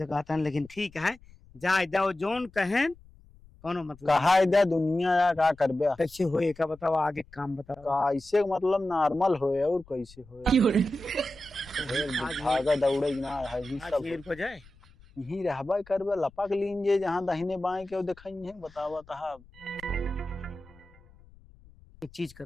कहता है, लेकिन ठीक है जा जाओ जोन कहें कोनो मतलब कहा इधर दुनिया या का करबे, कैसे होए का बताओ, आगे काम बताओ। कैसे मतलब नॉर्मल होए और कैसे होए, भागा दौड़े ना है ही आज सब खेल को जाए यही रहबा करबे, लपक लीन जे जहां दाहिने बाएं के दिखाई है बतावा ता। एक चीज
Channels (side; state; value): left; noise; rumble, 24 dB below the sound